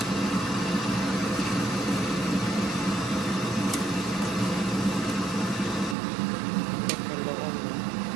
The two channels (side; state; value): left; drops out; at 6.0 s